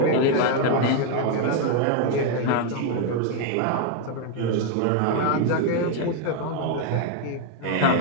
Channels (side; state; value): both; different; correlation 0.01